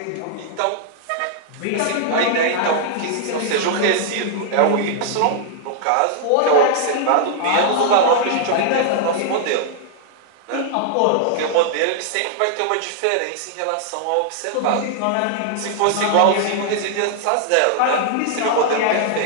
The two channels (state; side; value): different; both; correlation -0.01